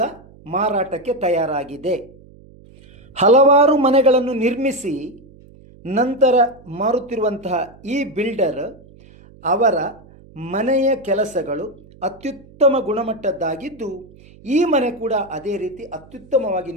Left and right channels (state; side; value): noise; right; hum, 24 dB below the sound